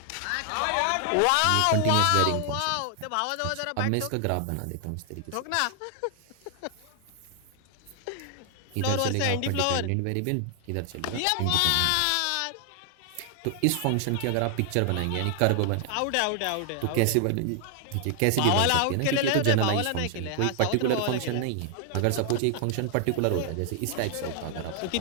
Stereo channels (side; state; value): both; different; correlation 0.00